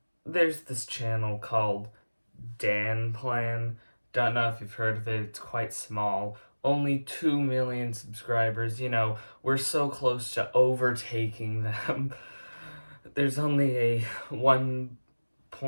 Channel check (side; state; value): both; inverted; correlation -1.00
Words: there's this channel called Danplan. Don't know if you've heard of it, it's quite small. Only 2 million subscribers, you know, we're so close to overtaking them. There's only a